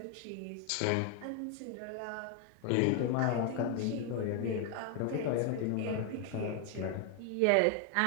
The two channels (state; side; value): different; both; correlation 0.00